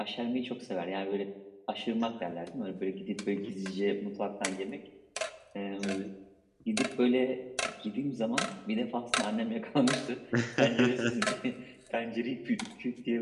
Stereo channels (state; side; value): identical; both; correlation 1.00